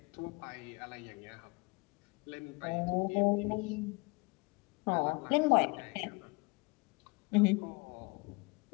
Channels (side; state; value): right; quieter; 27.6 dB